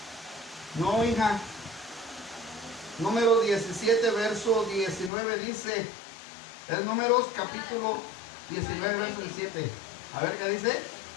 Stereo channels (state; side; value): drops out; right; at 5.1 s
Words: No, hija. Número 17, verso 19 dice. Es Números, capítulo 19, verso 17. A ver qué dice.